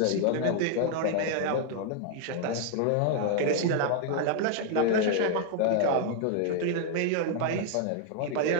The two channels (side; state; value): both; different; correlation 0.00